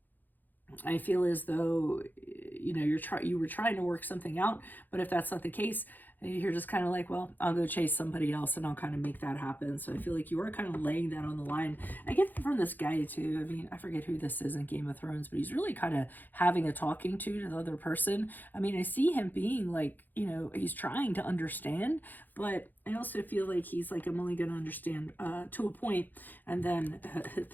I feel as though, you know, you were trying to work something out, but if that's not the case, you're just kind of like, well, I'll go chase somebody else and I'll kind of make that happen. So I feel like you are kind of laying that on the line. I get that from this guy too. I mean, I forget who this is in Game of Thrones, but he's really kind of having a talking to the other person. I mean, I see him being like, you know, he's trying to understand, but I also feel like he's like, I'm only going to understand to a point, and then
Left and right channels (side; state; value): right; late; 0.086 ms